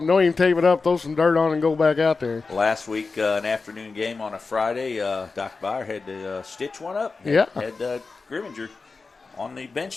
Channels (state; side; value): quieter; right; 4.2 dB